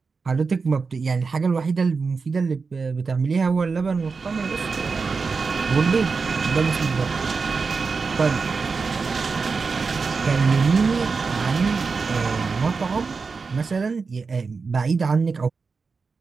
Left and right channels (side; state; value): left; quieter; 4.8 dB